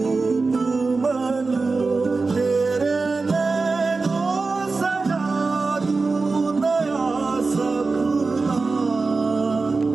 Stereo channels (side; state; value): left; quieter; 4.0 dB